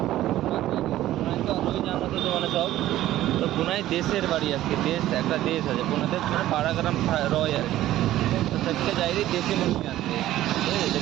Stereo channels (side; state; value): left; quieter; 14.2 dB